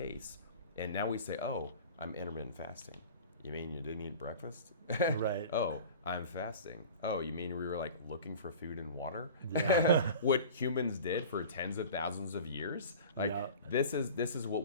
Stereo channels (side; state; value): both; inverted; correlation -0.39